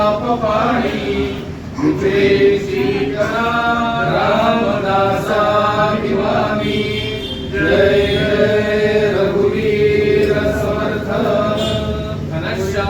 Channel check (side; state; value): both; identical; correlation 1.00